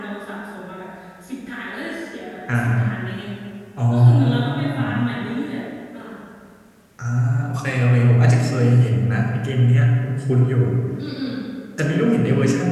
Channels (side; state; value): both; identical; correlation 1.00